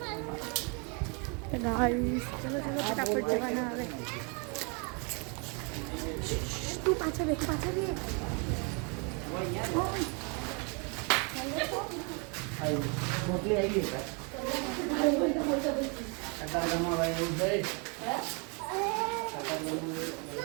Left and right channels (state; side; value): quieter; left; 34.0 dB